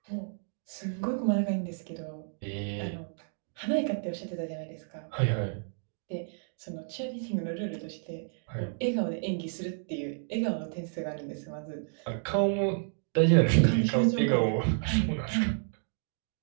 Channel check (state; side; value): silent; left; digital silence